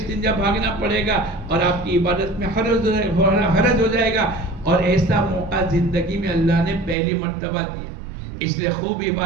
بھاگنا پڑے گا اور آپ کی عبادت میں حرج ہو جائے گا۔ اور ایسا موقع زندگی میں اللہ نے پہلی مرتبہ دیا، اس لیے خوب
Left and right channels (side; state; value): left; drops out; at 7.0 s